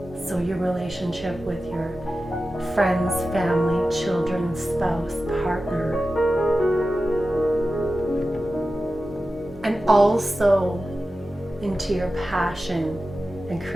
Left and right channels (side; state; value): both; normal; correlation 0.93